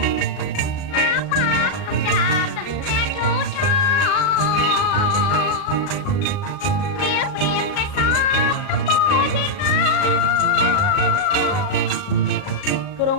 ក្រុ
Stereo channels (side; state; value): right; late; 38 ms